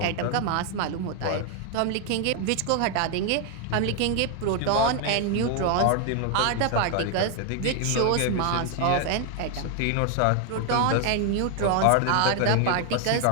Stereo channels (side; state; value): both; different; correlation 0.00